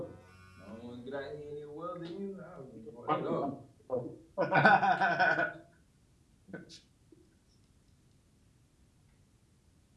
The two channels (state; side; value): identical; both; correlation 1.00